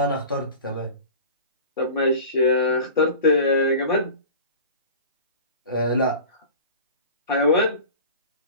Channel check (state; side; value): inverted; both; correlation -0.38